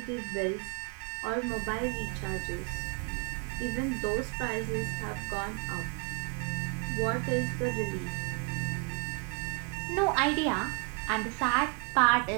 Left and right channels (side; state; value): left; quieter; 35.9 dB